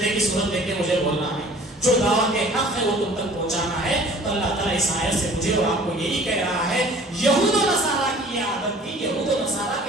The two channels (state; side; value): normal; both; correlation 0.49